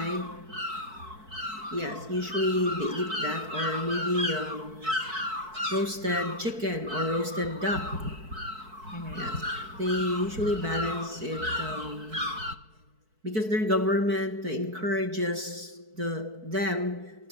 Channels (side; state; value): left; late; 4.6 ms